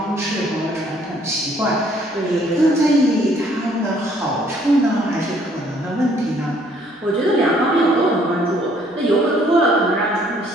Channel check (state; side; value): normal; both; correlation 0.63